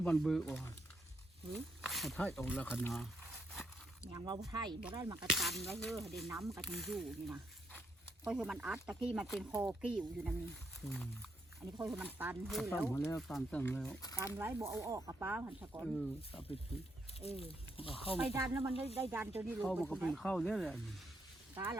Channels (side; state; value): both; normal; correlation 0.77